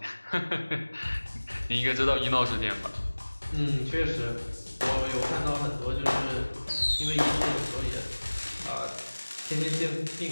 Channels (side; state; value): both; inverted; correlation -1.00